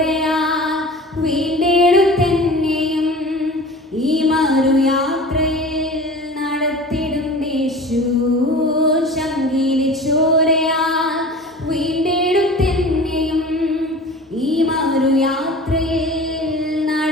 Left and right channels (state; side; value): normal; both; correlation 0.39